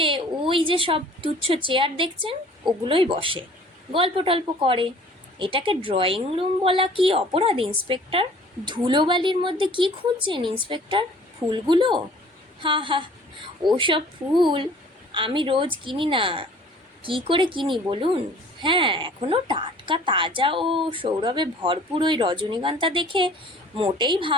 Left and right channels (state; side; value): normal; both; correlation 0.50